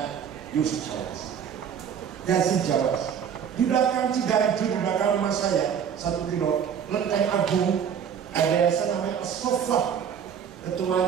Yusuf Jawas, Yazid Jawas. Di belakang Ciganjur, di belakang rumah saya 1 kilo, Lenteng Agung, ada yayasan namanya As-Soffah,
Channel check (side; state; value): left; quieter; 7.9 dB